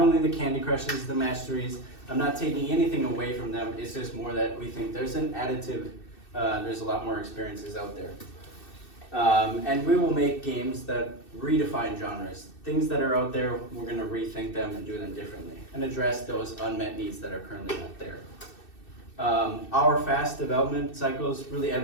the Candy Crushes, the Masteries. I'm not taking anything away from them, it's just more that we think there's an additive, there's a lot more experiences out there. And we will make games that redefine genres. Things that are out there, we're going to rethink them and do them differently and address those unmet needs that are currently not there. Our fast development cycles really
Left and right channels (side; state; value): right; late; 2.6 ms